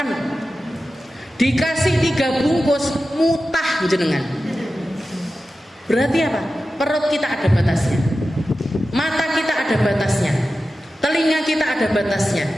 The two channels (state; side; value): normal; both; correlation 0.93